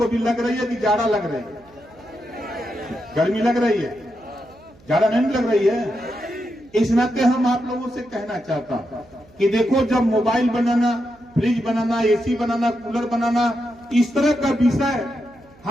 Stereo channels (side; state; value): right; noise; hum, 27 dB below the sound